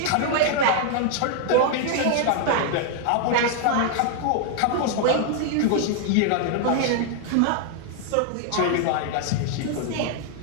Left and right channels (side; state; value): both; different; correlation 0.00